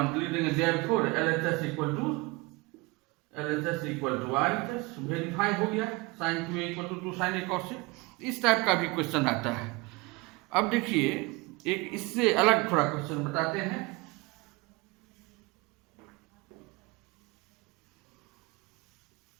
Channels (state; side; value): quieter; left; 24.8 dB